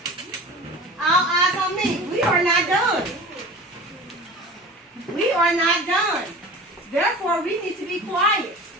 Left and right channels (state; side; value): normal; both; correlation 0.37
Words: All eyes on me. We are not done. We are not done. Therefore, we need to be quiet.